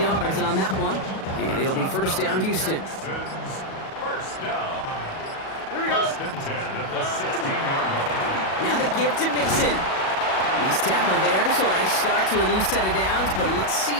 yards on that one. And it'll be 1st down, Houston. First down. First and 10 at the 16-yard line. Now the give to Mixon. He's tackled there, so I start to a new set of downs, but let's see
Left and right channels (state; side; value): late; right; 37 ms